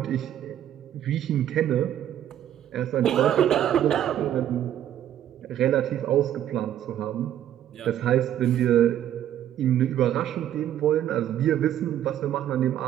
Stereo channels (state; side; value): quieter; left; 11.2 dB